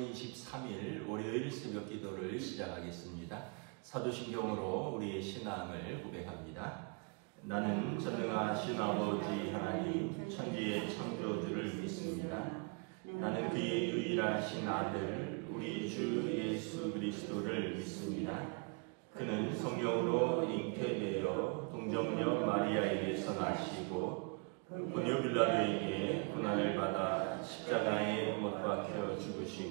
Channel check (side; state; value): left; quieter; 35.2 dB